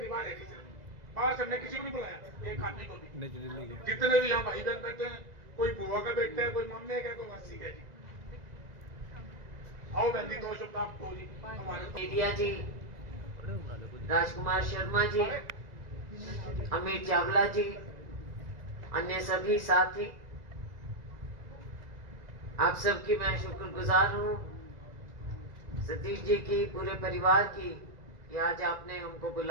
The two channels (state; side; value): late; left; 2.0 ms